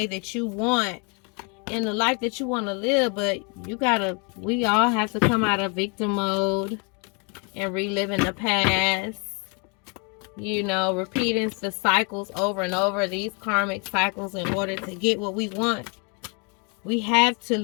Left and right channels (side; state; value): right; quieter; 34.5 dB